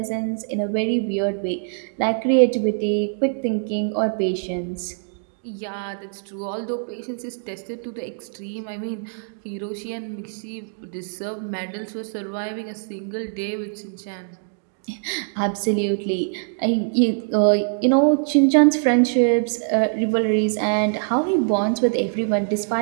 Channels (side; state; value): left; silent; digital silence